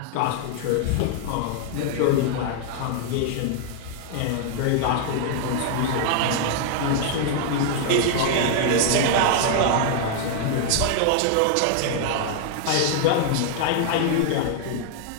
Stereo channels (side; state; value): both; different; correlation 0.00